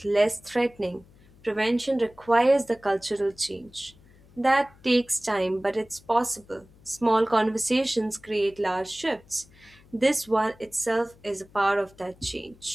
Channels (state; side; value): noise; left; hum, 27 dB below the sound